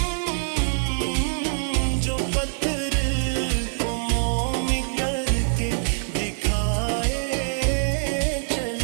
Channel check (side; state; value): left; silent; 62 dB below the other